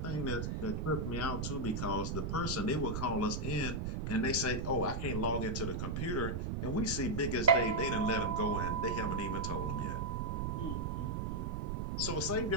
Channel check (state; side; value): noise; right; rumble, 1 dB below the sound